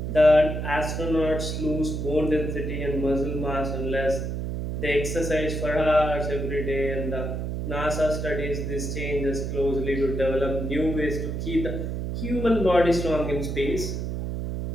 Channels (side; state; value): right; noise; hum, 3 dB below the sound